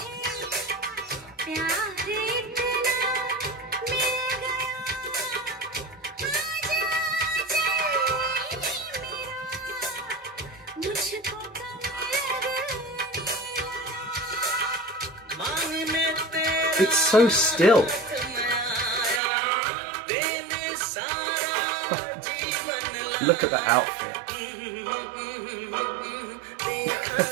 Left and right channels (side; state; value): left; drops out; at 19.2 s